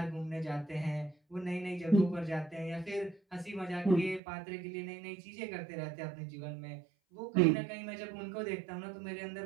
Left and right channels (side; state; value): left; drops out; at 4.2 s